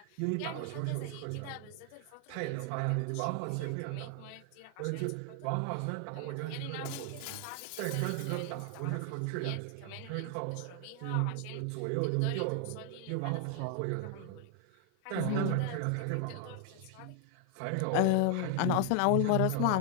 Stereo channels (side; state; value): both; different; correlation 0.00